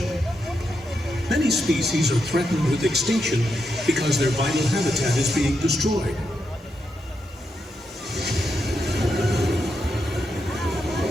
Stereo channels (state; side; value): normal; both; correlation 0.83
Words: Many species are threatened with extinction because their vital habitat is being destroyed.